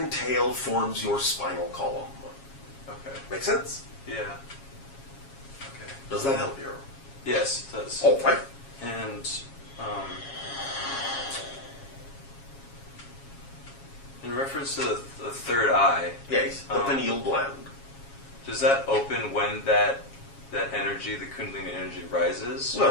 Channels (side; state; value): right; late; 7.3 ms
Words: tail forms your spinal column. Okay. Make sense? Yeah. Okay. Does that help you? Yes, it does. All right. And in reference to the third eye, Yes, the pineal gland. Does that open when that energy, the Kundalini energy, rises?